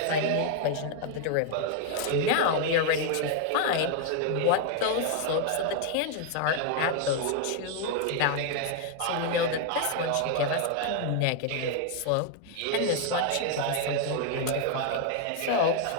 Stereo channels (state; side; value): different; both; correlation 0.00